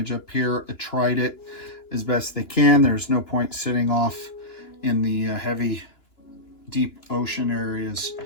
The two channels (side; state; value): right; late; 2.9 ms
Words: up here. I tried it as best they can. There's no point sitting off in the heavy, deep ocean areas